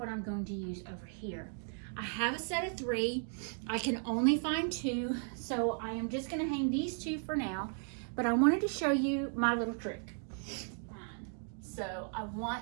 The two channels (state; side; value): silent; left; 54 dB below the other